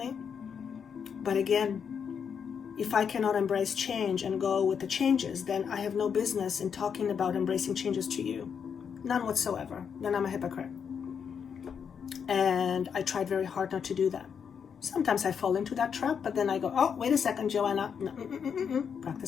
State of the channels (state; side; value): quieter; right; 7.0 dB